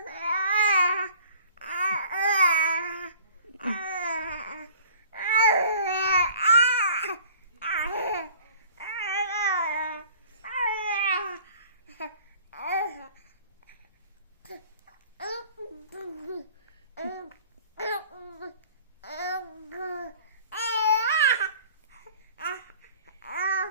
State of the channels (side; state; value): both; inverted; correlation -0.49